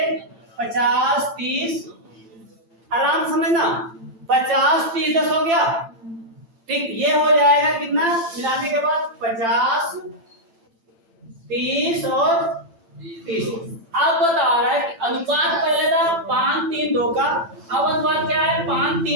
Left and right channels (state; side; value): late; left; 8.9 ms